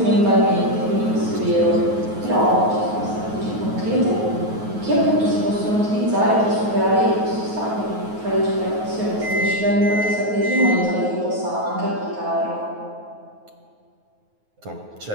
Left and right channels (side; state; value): left; late; 9.4 ms